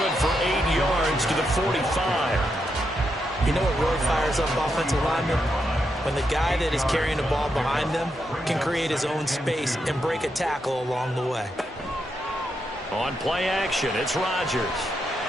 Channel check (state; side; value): normal; both; correlation 0.83